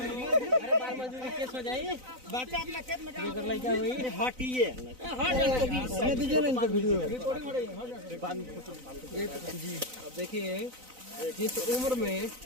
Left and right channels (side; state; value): left; late; 3.9 ms